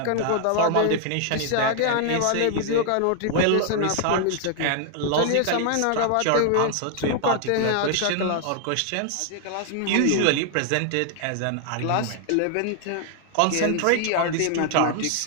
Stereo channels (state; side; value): different; both; correlation 0.00